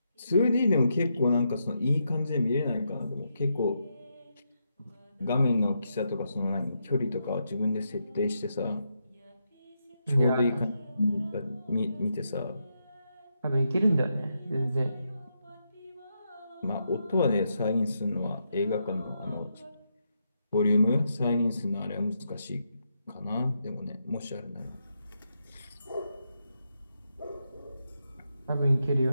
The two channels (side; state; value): both; inverted; correlation -0.82